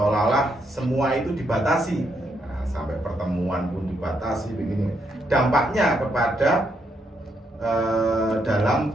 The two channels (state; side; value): normal; both; correlation 0.77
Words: semua itu dibatasi. Sampai pertemuan pun dibatasi begini. Dampaknya kepada dalam